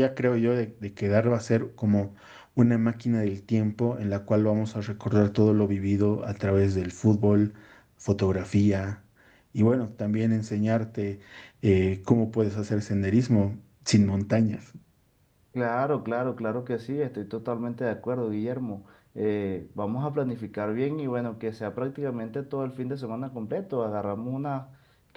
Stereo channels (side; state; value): both; identical; correlation 1.00